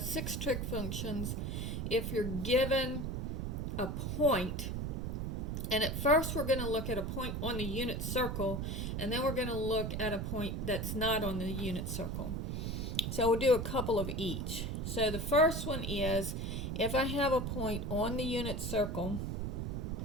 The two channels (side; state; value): right; noise; rumble, 2 dB below the sound